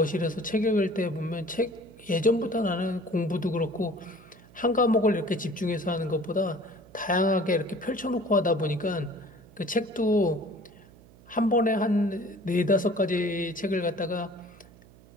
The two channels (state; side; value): noise; right; hum, 24 dB below the sound